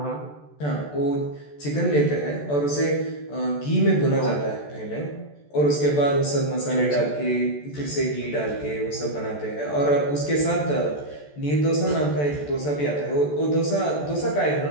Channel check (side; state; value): right; late; 14 ms